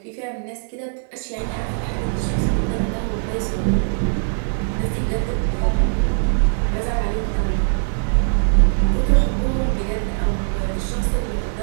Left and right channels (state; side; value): silent; left; digital silence